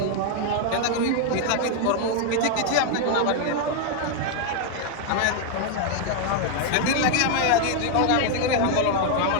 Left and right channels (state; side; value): different; both; correlation 0.00